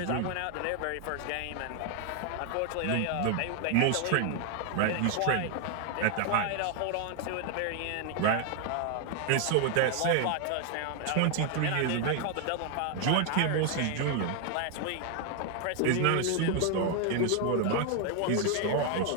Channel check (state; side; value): different; both; correlation 0.00